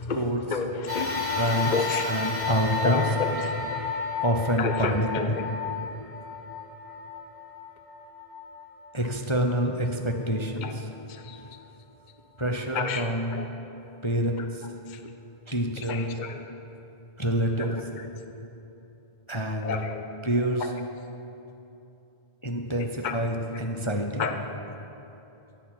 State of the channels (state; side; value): late; right; 1.4 ms